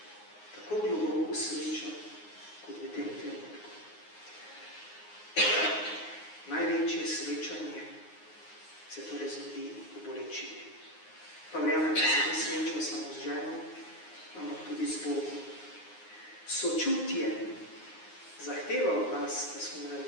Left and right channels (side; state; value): right; late; 9.6 ms